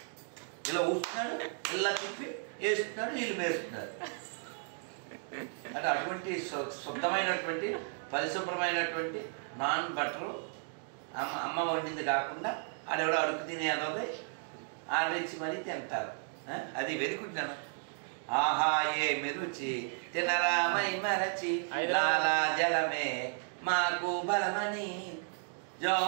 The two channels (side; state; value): left; silent; 55 dB below the other